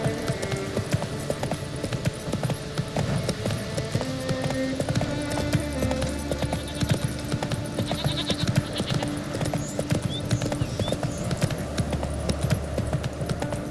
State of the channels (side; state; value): both; identical; correlation 1.00